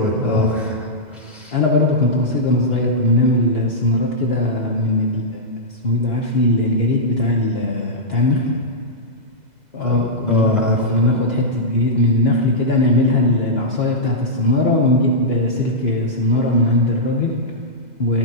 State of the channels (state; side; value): late; left; 2.0 ms